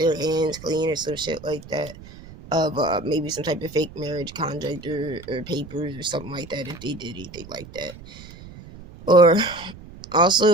hands clean or some shit like that, of maybe some type of fake marriage contract or papers or something like that, if they did anything like that. Or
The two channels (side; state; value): right; noise; rumble, 17 dB below the sound